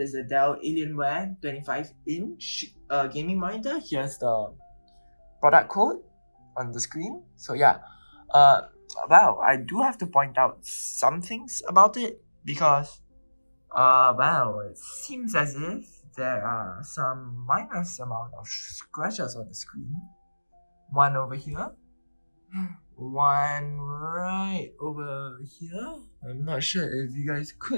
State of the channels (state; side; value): inverted; both; correlation -1.00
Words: a Dell Alienware 25-inch gaming monitor. Here's the product code on the screen. So yeah, well, I do have to point out some things about it because well, it seems as if there are some minor amount of scratches on the screen. One over here, one right over here. I'm not sure if you guys